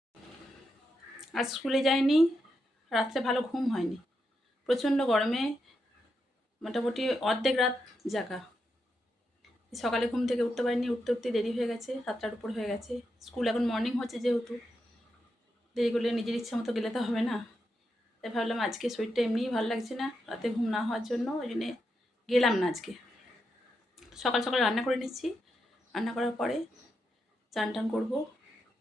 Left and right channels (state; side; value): normal; both; correlation 0.85